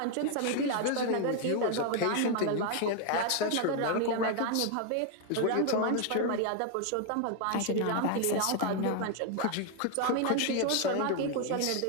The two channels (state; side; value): different; both; correlation 0.00